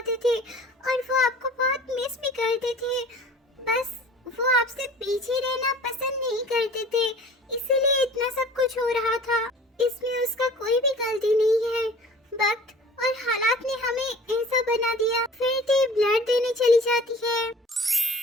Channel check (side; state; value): both; normal; correlation 0.45